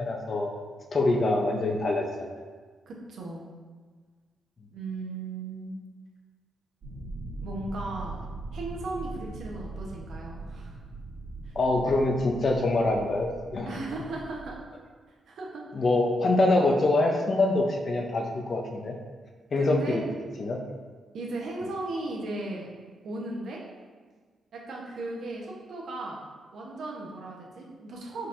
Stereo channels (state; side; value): normal; both; correlation 0.81